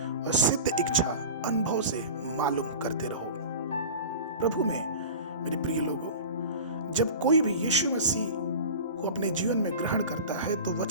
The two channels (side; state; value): both; inverted; correlation -0.34